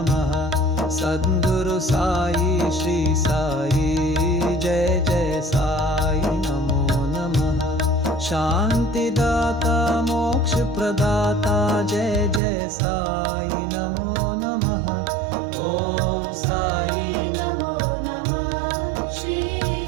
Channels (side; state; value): left; drops out; at 12.4 s